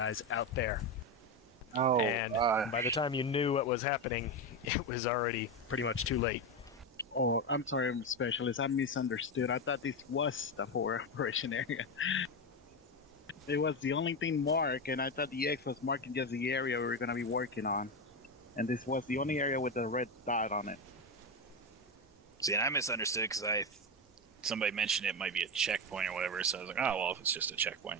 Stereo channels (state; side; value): normal; both; correlation 0.13